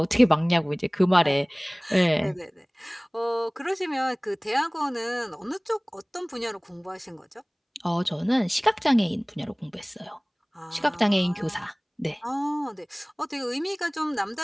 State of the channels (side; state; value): both; identical; correlation 1.00